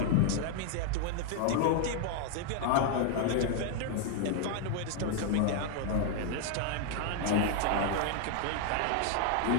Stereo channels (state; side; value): different; both; correlation 0.00